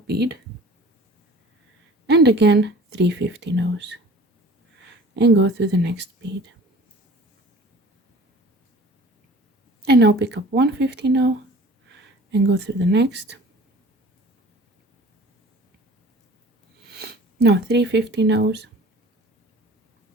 bead, and again 3 50 and go through the next bead, and now pick up 150 and go through the next. Now 350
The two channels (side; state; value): both; normal; correlation 0.45